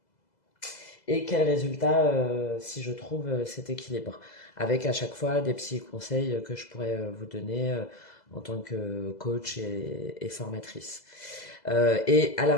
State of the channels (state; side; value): late; right; 2.0 ms